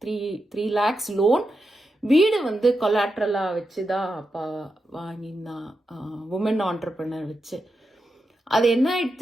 lakhs லோன். வீடு வந்து கொலாட்ரலாக வச்சு தான் அப்பா வாங்கியிருந்தான், உமன் ஆண்டர்பிரினர் வச்சு. அது என்ன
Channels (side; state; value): both; normal; correlation 0.88